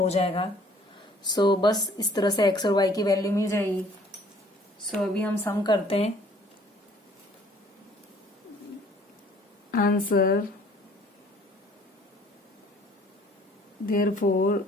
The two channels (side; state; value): both; normal; correlation 0.57